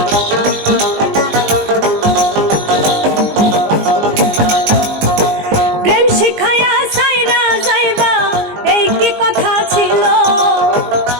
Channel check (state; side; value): late; left; 19 ms